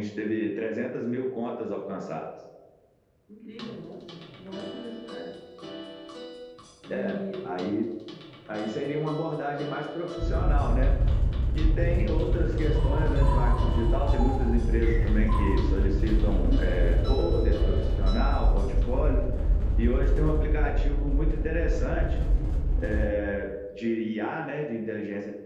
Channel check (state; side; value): identical; both; correlation 1.00